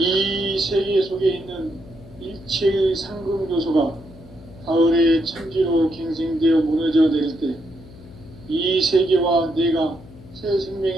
세계 속에 있는 일체의 상금 요소가 가을의 천지로 갱생되어 무너져 내릴 때 이 세계와 내가 새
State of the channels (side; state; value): left; noise; hum, 19 dB below the sound